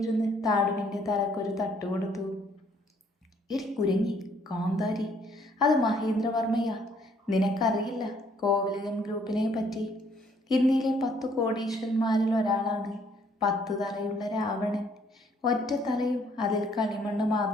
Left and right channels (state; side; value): normal; both; correlation 0.64